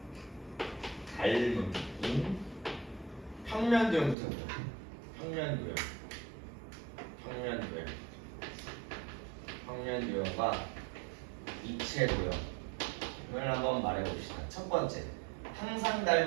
닮음인 평면도형부터 해보자. 평면도형과 입체도형을 한번 말해봅시다. 첫 번째, 항상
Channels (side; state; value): left; drops out; at 4.2 s